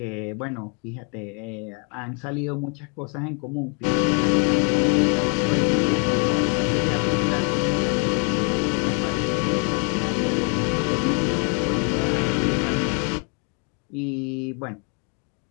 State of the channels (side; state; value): right; quieter; 36.9 dB